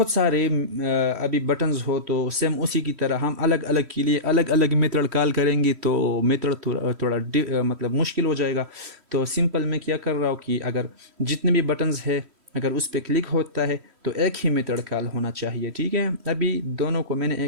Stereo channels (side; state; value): left; late; 3.1 ms